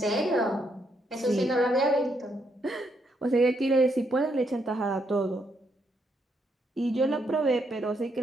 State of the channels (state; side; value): normal; both; correlation 0.76